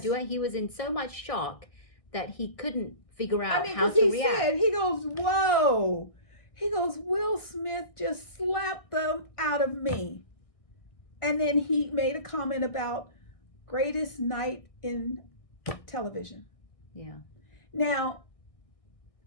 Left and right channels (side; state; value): right; late; 1.6 ms